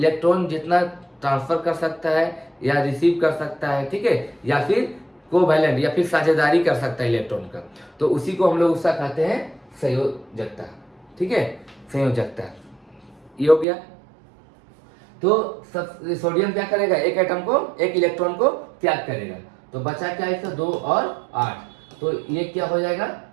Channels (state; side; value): drops out; left; at 13.7 s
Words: जितना ट्रांसफर कर सकता है या रिसीव कर सकता है, ठीक है, या फिर कोवैलेंट या फिर साझेदारी कर सकता है इलेक्ट्रॉन का, तो उसी को हम लोग उसका कहते हैं संयोजकता, ठीक है, संयोजकता। ये हो गया। तो सोडियम क्या करेगा 1 एटम को 1 इलेक्ट्रॉन को त्याग करेगा, तो बचा क्या इसका 2 और 8, तो ये क्या हो जाएगा